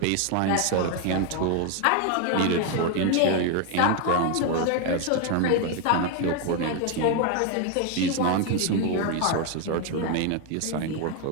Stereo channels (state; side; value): different; both; correlation 0.01